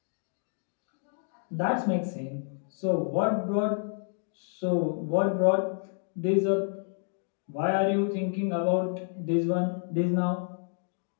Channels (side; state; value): right; silent; 58 dB below the other